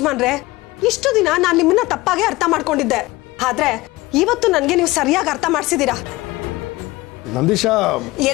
ಇಷ್ಟು ದಿನ ನಾನ್ ನಿಮ್ಮನ್ನ ತಪ್ಪಾಗೆ ಅರ್ಥ ಮಾಡ್ಕೊಂಡಿದ್ದೆ. ಆದ್ರೆ ಇವತ್ತು ನನ್ಗೆ ನೀವು ಸರಿಯಾಗಿ ಅರ್ಥ ಮಾಡ್ಸಿದೀರಾ. ನಂದೀಶಾ,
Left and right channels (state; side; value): quieter; right; 20.2 dB